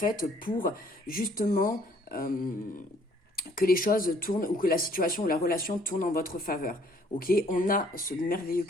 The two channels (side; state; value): both; normal; correlation 0.61